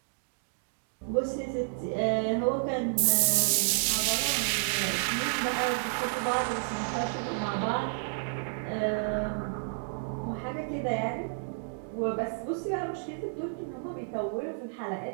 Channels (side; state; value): left; silent; digital silence